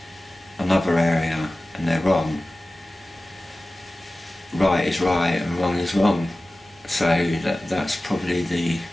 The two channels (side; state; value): both; normal; correlation 0.96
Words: another area and they're wrong. Right is right and wrong is wrong. So that's probably the